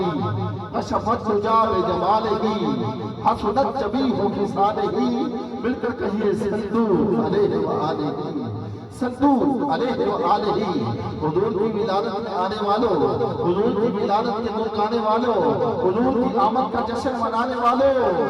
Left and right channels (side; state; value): both; identical; correlation 1.00